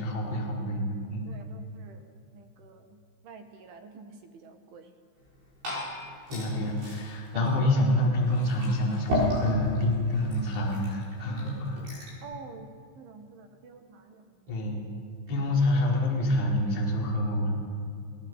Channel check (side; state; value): left; late; 15 ms